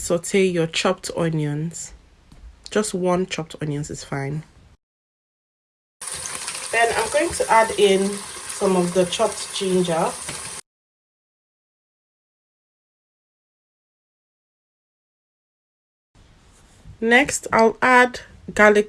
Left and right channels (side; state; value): both; identical; correlation 1.00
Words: your chopped onions. Just 1 chopped onions is fine. Then I'm going to add in some of the chopped ginger. Next, I'll add